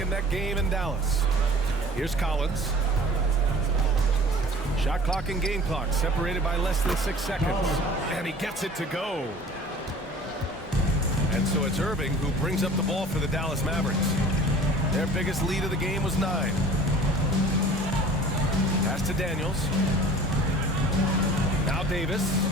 game in Dallas. Here's Collins. Shot clock and game clock separated by less than 6 seconds. And he gets it to go. And so it's Irving who brings up the ball for the Dallas Mavericks. Their biggest lead of the game was 9. Pass to Daniels. Now Davis.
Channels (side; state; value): both; normal; correlation 0.45